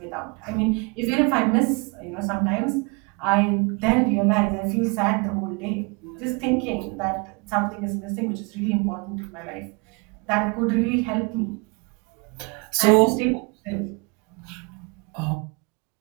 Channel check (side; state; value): left; quieter; 30.8 dB